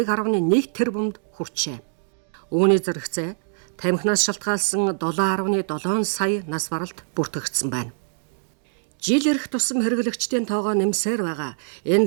тэрбумд хүрчээ. Үүний зэрэгцээ тамхинаас шалтгаалсан 7.7 сая нас баралт бүртгэгдсэн байна. Жил ирэх тусам хэрэглэгчдийн тоогоо нэмсээр байгаа.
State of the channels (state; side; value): silent; left; digital silence